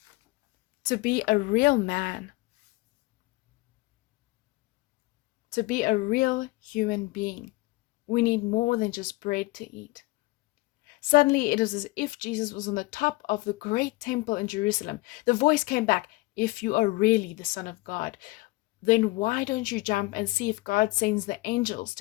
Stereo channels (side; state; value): right; quieter; 21.2 dB